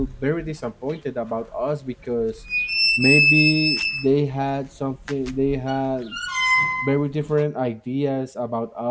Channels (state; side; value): identical; both; correlation 1.00